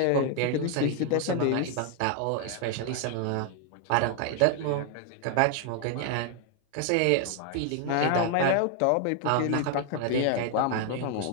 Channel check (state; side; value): different; both; correlation 0.00